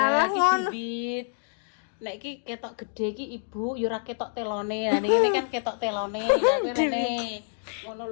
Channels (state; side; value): silent; right; 60 dB below the other